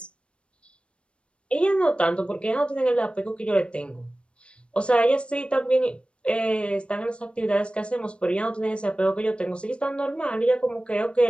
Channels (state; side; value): late; right; 0.058 ms